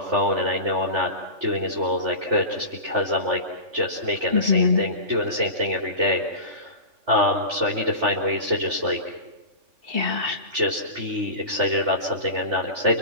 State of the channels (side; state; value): left; late; 3.4 ms